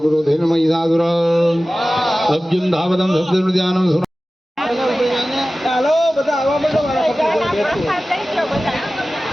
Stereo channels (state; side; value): normal; both; correlation 0.96